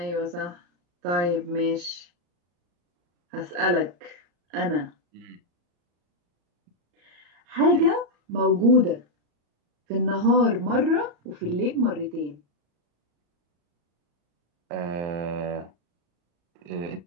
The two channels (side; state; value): left; late; 34 ms